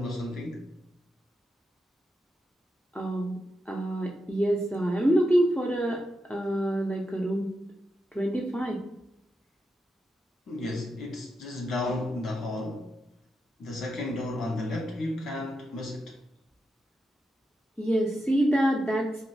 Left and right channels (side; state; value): both; normal; correlation 0.86